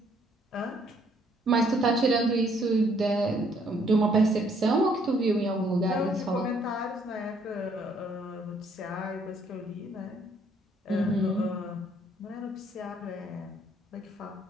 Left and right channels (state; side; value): normal; both; correlation 0.66